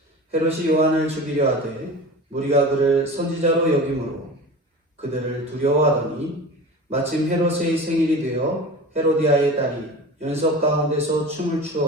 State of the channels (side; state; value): both; normal; correlation 0.34